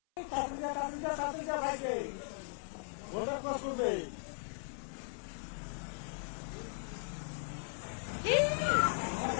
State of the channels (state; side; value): silent; right; 53 dB below the other